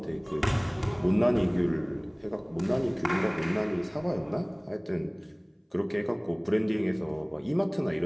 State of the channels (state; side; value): identical; both; correlation 1.00